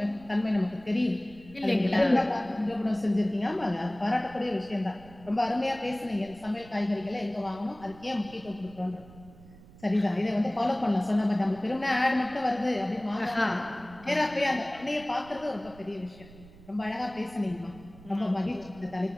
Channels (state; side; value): noise; right; rumble, 21 dB below the sound